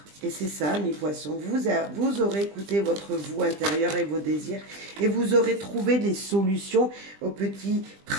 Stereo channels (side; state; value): left; late; 20 ms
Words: Et c'est ça, mes poissons. Vous aurez écouté votre vous intérieur et vos désirs. Et vous aurez trouvé des solutions aux petits